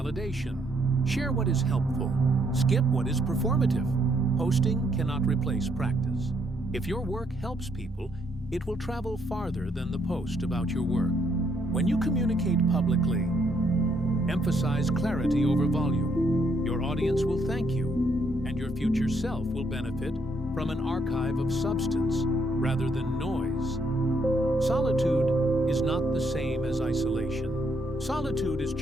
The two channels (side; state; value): both; normal; correlation 0.72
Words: Share what is helpful. Skip what is performative. Posting cannot replace practice. If your work helps people, it will travel farther than the post about your work. When you communicate publicly, emphasize clarity over volume. Your audience will thank you, and your future self will benefit from an archive of substance rather than noise. Solitude is not the same as isolation. Solitude is